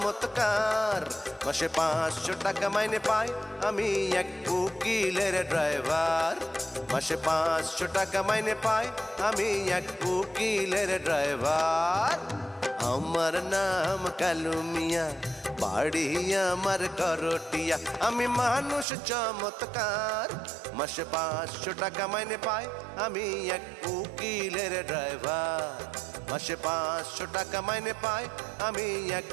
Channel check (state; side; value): drops out; left; at 18.9 s